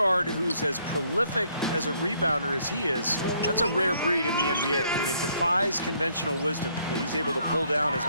who's as prolific as a rebounder as he is, that's a rare breed in the NBA. I mean, it defies conventional wisdom that he's able to pull down as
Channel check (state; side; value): inverted; both; correlation -0.68